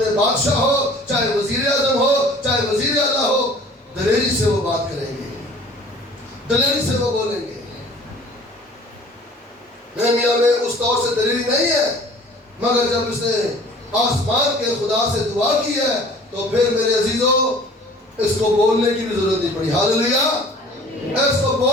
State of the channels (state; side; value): normal; both; correlation 0.49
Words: بادشاہ ہو، چاہے وزیر اعظم ہو، چاہے وزیر اعلیٰ ہو، دلیری سے وہ بات کریں گے، دلیری سے وہ بولیں گے۔ نہمیا میں اس طور سے دلیری نہیں ہے، مگر جب اس نے آسمان کے خدا سے دعا کی ہے تو پھر میرے عزیزوں اس کو بولنے کی بھی ضرورت نہیں پڑی۔ ہاللیلویہ، اس کو